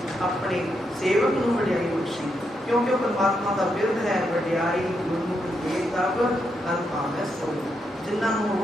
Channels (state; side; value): normal; both; correlation 0.81